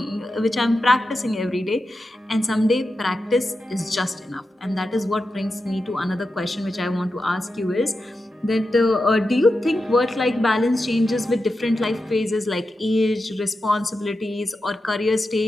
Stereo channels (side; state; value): both; normal; correlation 0.90